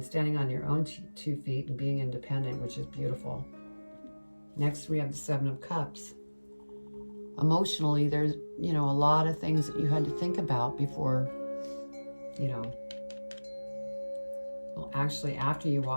standing on your own 2 feet and being independent, which is beautiful. Next, we have the Seven of Cups. Emotionally, there's, a lot of things that you had to think about before, well, actually, after you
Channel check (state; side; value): inverted; both; correlation -1.00